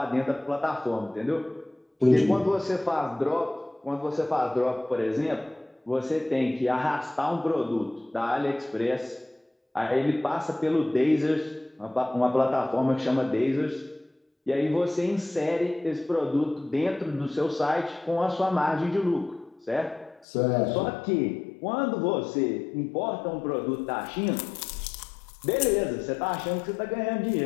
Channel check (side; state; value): right; drops out; at 20.2 s